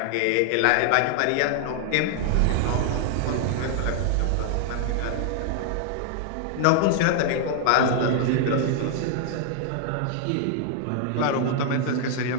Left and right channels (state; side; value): different; both; correlation 0.00